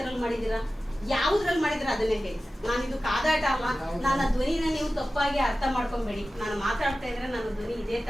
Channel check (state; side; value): normal; both; correlation 0.95